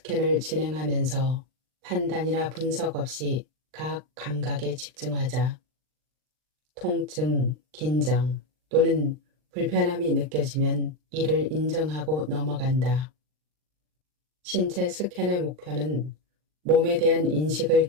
진행하면서 판단이나 분석 없이 각 감각에 집중하자. 통증, 긴장 또는 불편함이 느껴지면 이를 인정하고 넘어간다. 신체 스캔의 목표는 몸에 대한 인식을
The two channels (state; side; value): late; left; 39 ms